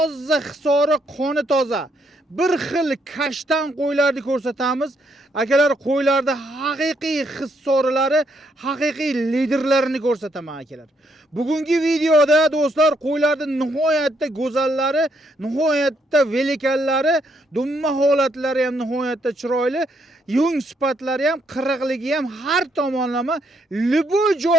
hisori qoni toza bir xil kashtan qo'ylarni ko'rsatamiz. Akalar, qo'ylarda haqiqiy hissorlari, haqiqiy liderlarini ko'rsataman akalar. Bugungi videoda do'stlar qo'ylarning nihoyatda go'zallari, nihoyatda velikanlari, dumma holatlari ham nihoyatda chiroyli, yung sifatlari ham, qirg'iligi ham har tomonlama liboy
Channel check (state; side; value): normal; both; correlation 0.74